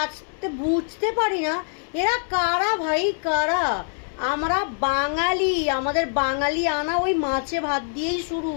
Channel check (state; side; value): silent; right; digital silence